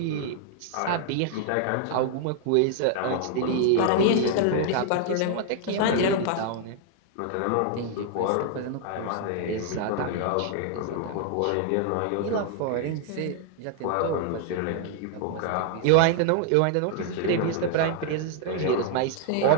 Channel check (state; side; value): different; both; correlation 0.00